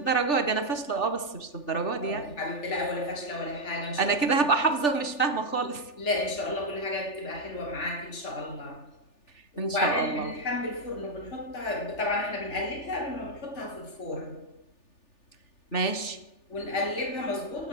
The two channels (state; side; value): late; right; 3.4 ms